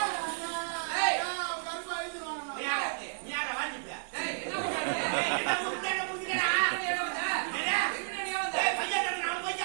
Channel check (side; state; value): left; silent; digital silence